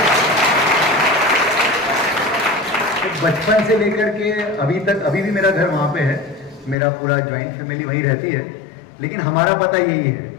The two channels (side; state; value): right; drops out; at 6.8 s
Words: तो बचपन से लेकर के अभी तक, अभी भी मेरा घर वहाँ पे है, मेरा पूरा ज्वाइंट फैमिली वहीं रहती है, लेकिन हमारा पता यही है।